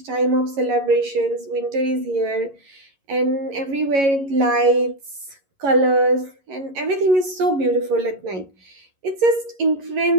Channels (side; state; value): left; late; 11 ms